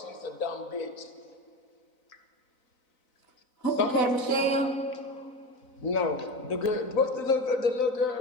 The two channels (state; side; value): late; right; 4.0 ms